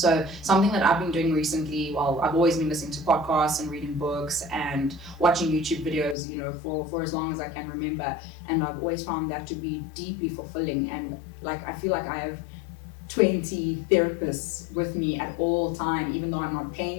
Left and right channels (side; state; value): right; drops out; at 6.2 s